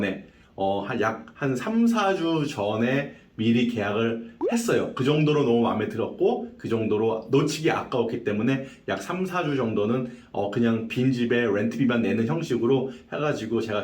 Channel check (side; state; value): both; identical; correlation 1.00